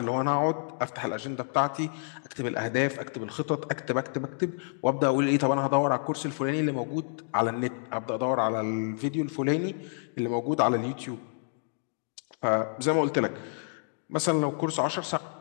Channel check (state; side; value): silent; right; digital silence